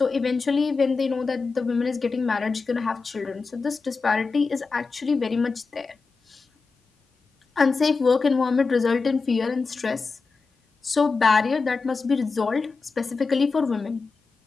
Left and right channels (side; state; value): right; quieter; 4.4 dB